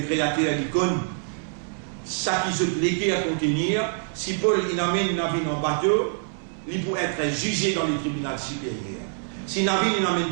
créateur l'icône, ça qui se légué à contenir, si Paul il amène une navire en bateau, il peut être jugé dans les tribunaux supérieurs. Si navire il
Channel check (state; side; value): silent; left; 62 dB below the other